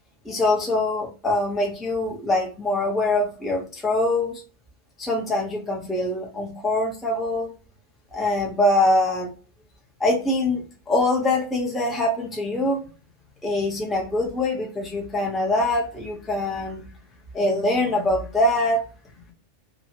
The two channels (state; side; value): normal; both; correlation 0.42